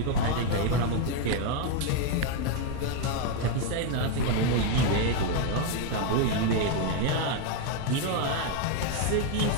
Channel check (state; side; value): different; both; correlation 0.01